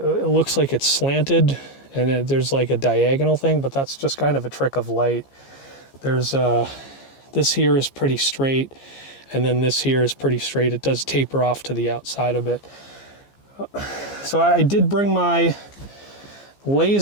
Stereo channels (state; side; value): late; right; 15 ms